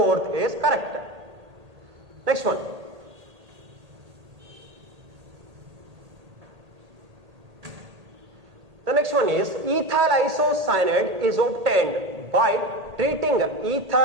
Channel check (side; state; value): left; late; 1.8 ms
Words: is correct. Next one. The next one is ethyl isocyanate is obtained by treating